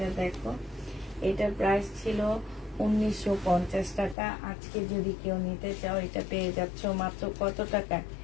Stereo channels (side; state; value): right; drops out; at 4.2 s